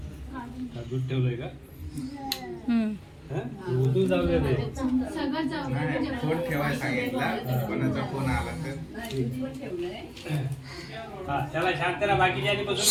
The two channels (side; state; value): both; identical; correlation 1.00